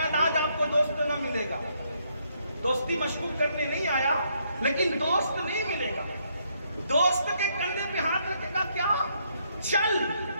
آج آپ کو دوست نہ ملے گا، دوستی مشکوک کرنے نہیں آیا، لیکن دوست نہیں ملے گا۔ دوست کے کندھے پہ ہاتھ رکھے گا کیا؟ چل،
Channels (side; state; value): both; inverted; correlation -0.73